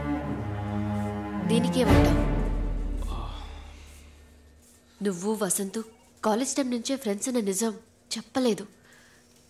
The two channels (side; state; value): both; identical; correlation 1.00